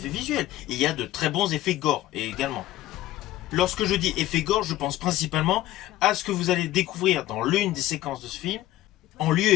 visuels. Il y a de très bons effets gore également. Lorsque je dis effets gore, je pense principalement à ce que vous allez découvrir dans l'une des séquences de ce film, en lieu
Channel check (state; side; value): quieter; right; 15.1 dB